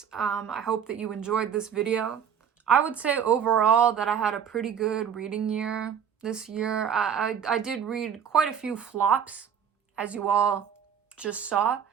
I hope that you enjoyed this video. I would say overall that I had a pretty good reading year this year. I did read quite a few flops, as you all just saw.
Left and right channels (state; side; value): quieter; left; 8.0 dB